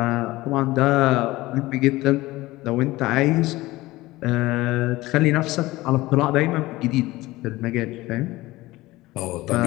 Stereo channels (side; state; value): right; quieter; 18.9 dB